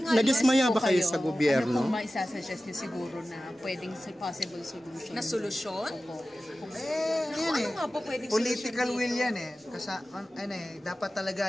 Nadismaya ba kayo sa gobyerno? Ano pong maisasuggest nyo siguro na pwedeng possible solution? Na solusyon? Ano nga po pwedeng political will yan Kasi dapat talaga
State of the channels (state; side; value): normal; both; correlation 0.95